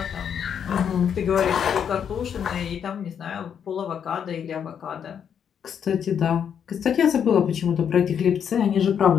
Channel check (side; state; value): right; quieter; 8.1 dB